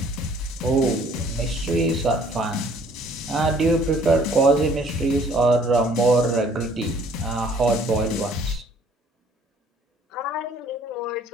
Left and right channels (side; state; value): both; normal; correlation 0.58